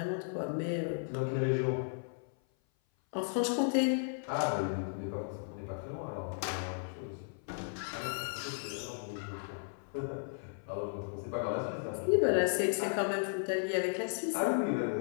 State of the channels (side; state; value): right; silent; 54 dB below the other